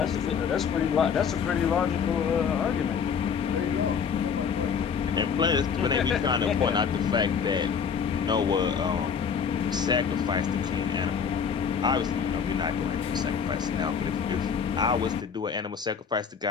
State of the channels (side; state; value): right; quieter; 6.6 dB